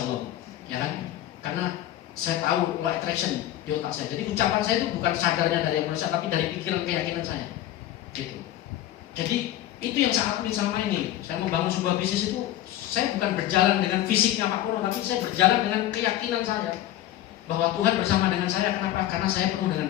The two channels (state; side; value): quieter; right; 13.3 dB